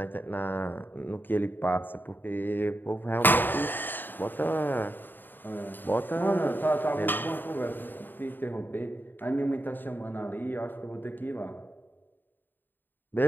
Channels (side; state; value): right; late; 0.092 ms